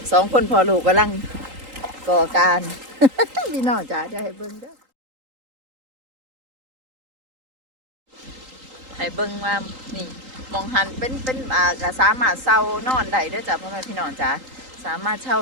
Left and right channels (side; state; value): left; late; 3.8 ms